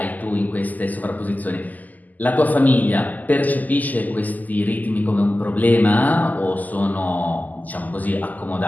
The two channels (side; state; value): right; late; 0.081 ms